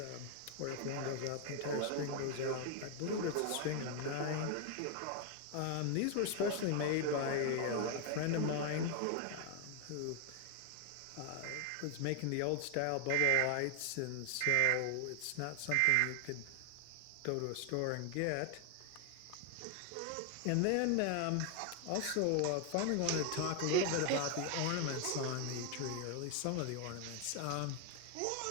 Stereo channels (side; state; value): both; different; correlation 0.00